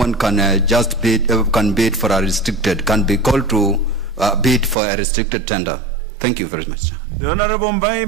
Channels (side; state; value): left; drops out; at 4.8 s